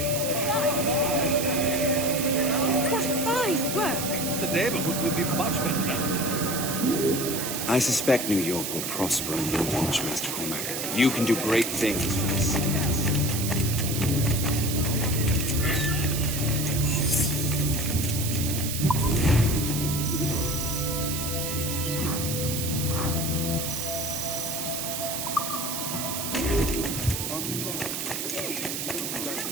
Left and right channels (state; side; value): noise; right; hiss, 3 dB below the sound